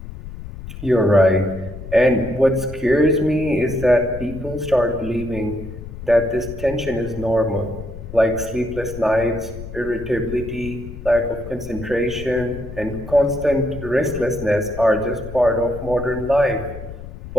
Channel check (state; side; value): noise; left; rumble, 12 dB below the sound